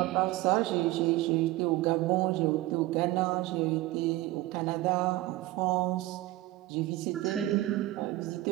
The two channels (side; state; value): left; quieter; 17.7 dB